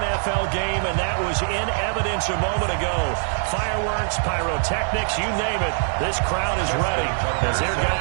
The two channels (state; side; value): silent; left; digital silence